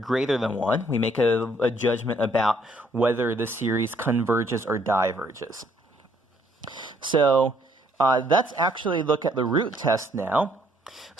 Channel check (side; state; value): both; normal; correlation 0.66